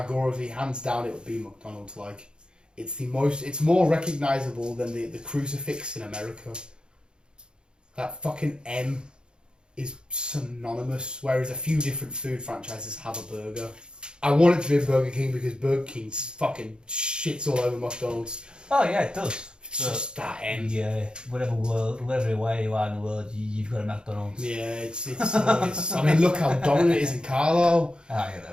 hands down, it would be McDonald's. Like, it's more recognisable than the crucifix in America. That fucking M is synonymous, whereas a few different food franchises have a burger. I want it to be a Burger King because Burger King fucking shits all over McDonald's. Oh yeah, it does. It's just that end. Yeah, whatever way you are in the world, you've got a McDonald's. Yeah, it's I mean, look how dominant it is in Carlo. Ah, you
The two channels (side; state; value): left; late; 0.050 ms